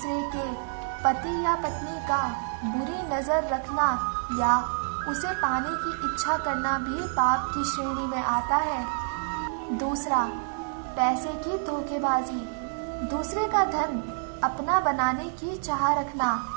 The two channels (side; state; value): left; silent; digital silence